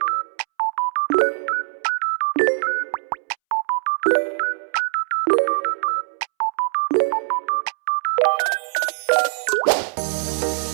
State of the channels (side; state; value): left; silent; 64 dB below the other